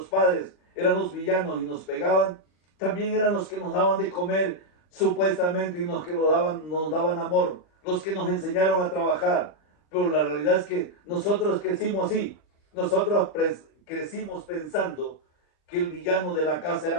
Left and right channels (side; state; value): right; late; 39 ms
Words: padres eran los villanos y nos pegaban, también eran los que nos daban de comer supuestamente y los que nos daban amor, los que nos enseñaron a trabajar. Pero la realidad es que nosotros crecimos así. Nosotros crecimos pensando que el villano de la casa